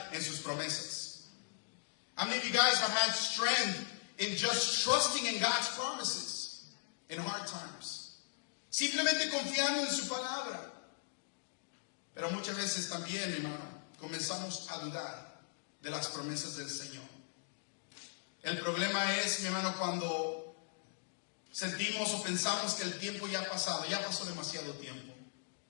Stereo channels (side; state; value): right; silent; digital silence